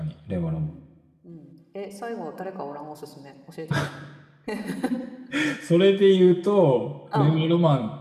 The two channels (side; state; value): both; identical; correlation 1.00